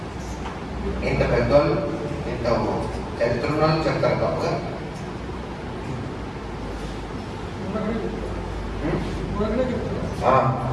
ఇంత పెద్దోళ్ళు, ఇంత చరిత్ర చెప్తారు తప్పగా.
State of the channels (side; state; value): both; identical; correlation 1.00